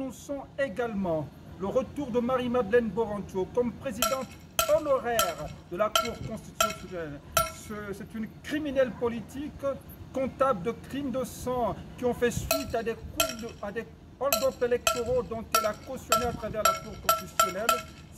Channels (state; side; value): identical; both; correlation 1.00